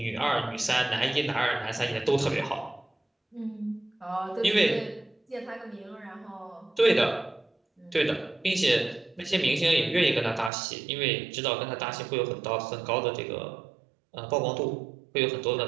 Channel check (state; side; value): drops out; left; at 10.5 s